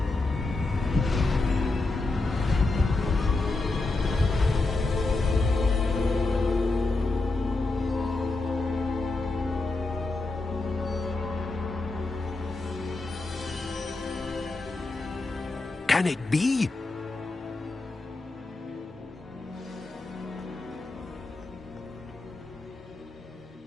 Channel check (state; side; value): quieter; right; 3.2 dB